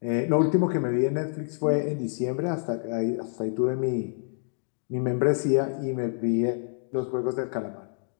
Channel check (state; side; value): silent; right; digital silence